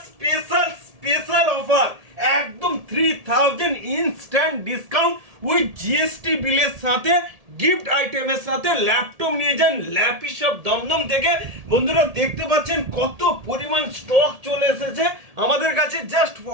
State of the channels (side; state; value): left; late; 1.7 ms